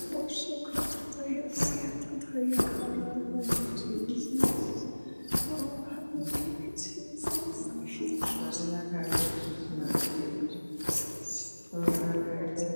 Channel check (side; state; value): both; inverted; correlation -1.00